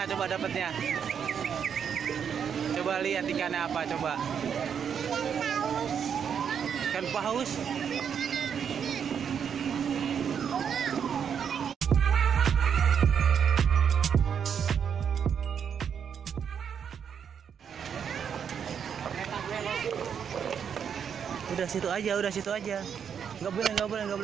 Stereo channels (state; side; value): quieter; left; 7.6 dB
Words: coba dapatnya? Coba lihat ikannya apa coba. Ikan paus. Udah situ aja. Nggak boleh